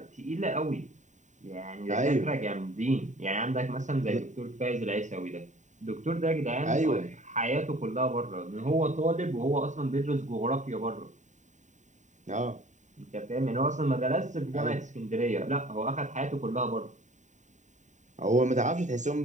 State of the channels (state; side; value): late; left; 0.35 ms